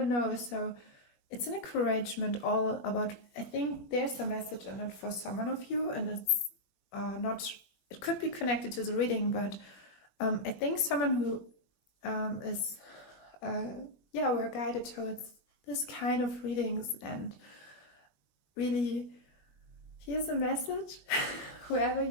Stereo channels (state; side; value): late; right; 20 ms